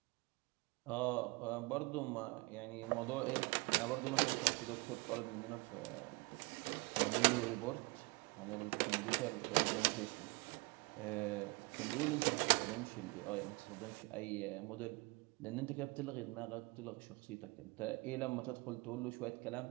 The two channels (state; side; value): quieter; left; 26.6 dB